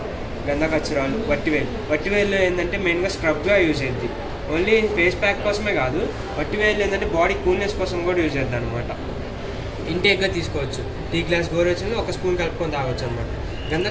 గంధకచ్చురాలు, వట్టివేల్లో ఏంటంటే మెయిన్గా స్క్రబ్గా యూజ్ అయ్యింది. ఓన్లీ ఫేస్ ప్యాక్ కోసమే కాదు, వట్టివేళ్ళు ఏంటంటే బాడీ కూల్నెస్ కోసం కూడా యూజ్ అవుతుంది అనమాట. ఇంటేక్గా తీసుకోవచ్చు. టీ గ్లాస్ గోరువెచ్చని 1 స్పూన్ కలుపుకొని తాగొచ్చు అనమాట.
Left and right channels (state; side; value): identical; both; correlation 1.00